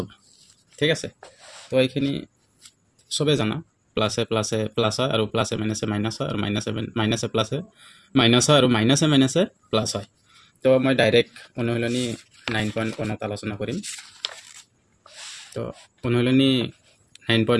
ঠিক আছে, তো এইখিনি চবে জানা। প্লাছে প্লাছে প্লাছ হয় আৰু প্লাছে মাইনাছে মাইনাছ হয়, আৰু মাইনাছে প্লাছে মাইনাছ হয়, আৰু মাইনাছে প্লাছ হয়। তো মই ডাইৰেক্ট অনুশীলনী 9.1ত আলোচনা কৰিম। তো অনুশীলনী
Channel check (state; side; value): identical; both; correlation 1.00